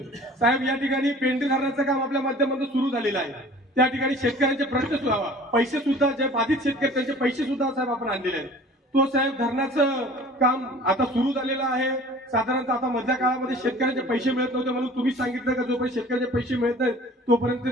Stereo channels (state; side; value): normal; both; correlation 0.46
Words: साहेब या ठिकाणी पेंढी धरणाचं काम आपल्या माध्यमातून सुरू झालेलं आहे। त्या ठिकाणी शेतकऱ्यांचे प्रश्न सुद्धा पैसे सुद्धा जे बाधित शेतकरी त्यांचे पैसे सुद्धा साहेब आपण आणलेले आहेत। तो साहेब धरणाचं काम आता सुरू झालेलं आहे। साधारणतः आता मधल्या काळामध्ये शेतकऱ्यांचे पैसे मिळत नव्हते म्हणून तुम्ही सांगितलं का जोपर्यंत शेतकऱ्यांचे पैसे मिळत नाहीत तोपर्यंत